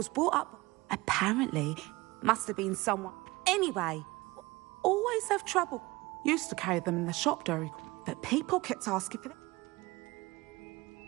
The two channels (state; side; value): quieter; left; 21.5 dB